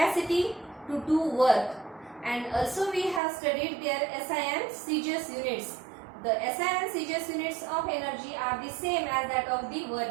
to do work, and also we have studied their SI and CGS units. The SI and CGS units of energy are the same as that of the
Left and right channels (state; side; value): drops out; left; at 3.2 s